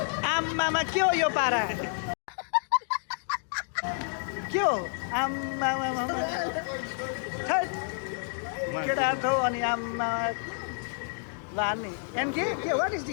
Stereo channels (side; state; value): right; silent; digital silence